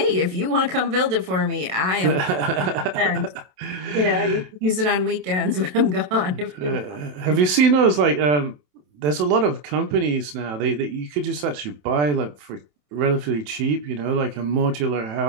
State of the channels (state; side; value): late; left; 27 ms